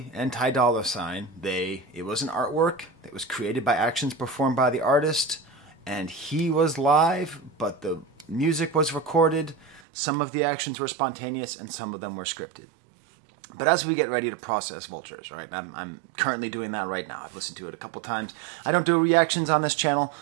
and Ty Dolla $ign, it was an artwork that was created by actions performed by the artist, and he was live, but the music was recorded. Some of the actions were spontaneous, and some of them were scripted. But as we get ready to process Vultures, right, I'm currently doing that right now. I've listened to it a couple times. I don't do reactions on this channel,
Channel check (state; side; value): drops out; left; at 9.8 s